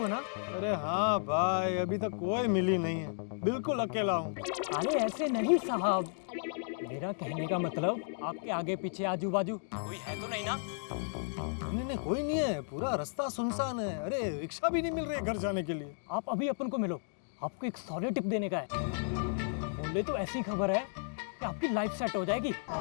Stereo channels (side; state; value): right; silent; digital silence